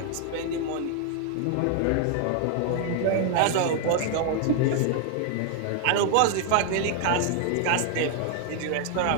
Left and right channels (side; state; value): both; different; correlation 0.00